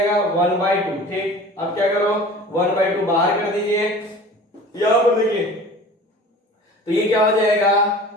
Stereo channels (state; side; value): normal; both; correlation 0.41